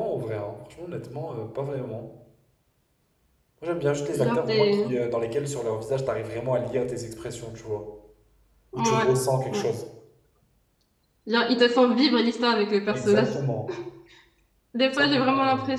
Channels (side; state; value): both; identical; correlation 1.00